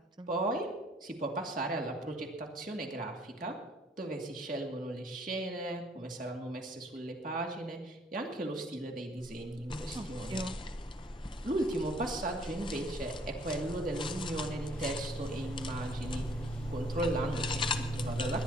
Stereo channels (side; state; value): both; normal; correlation 0.61